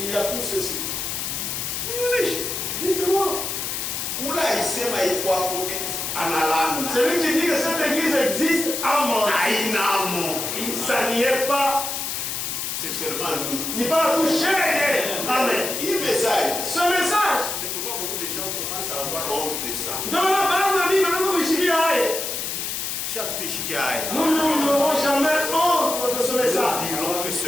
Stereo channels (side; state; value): left; noise; hiss, 3 dB below the sound